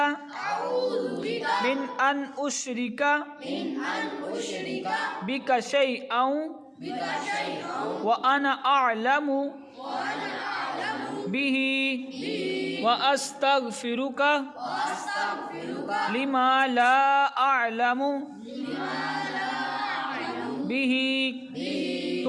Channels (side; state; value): both; identical; correlation 1.00